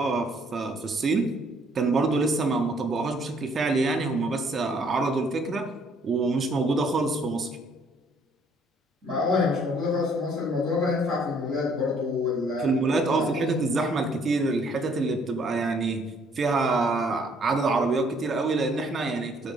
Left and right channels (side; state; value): both; normal; correlation 0.63